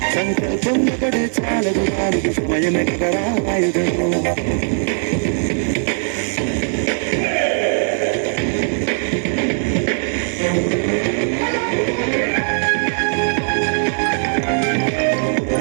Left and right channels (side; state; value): left; silent; 59 dB below the other